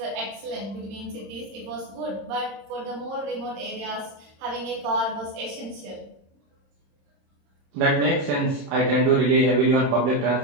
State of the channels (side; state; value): left; late; 26 ms